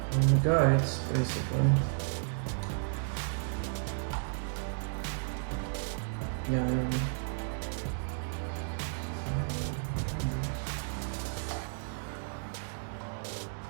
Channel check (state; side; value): silent; left; digital silence